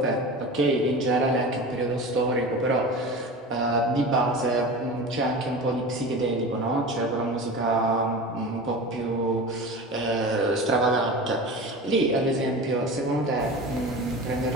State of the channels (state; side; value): normal; both; correlation 0.31